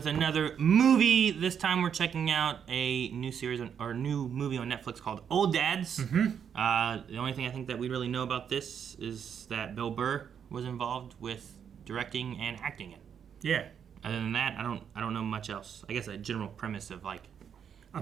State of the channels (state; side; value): quieter; left; 7.9 dB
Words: another movie. This time we're checking out a new series or new movie on Netflix called Old Dads. The only thing I think that we really know about this is that Bill Burr was involved with directing and acting it. Yeah. Other than that, I don't know much else. I guess a general premise of like a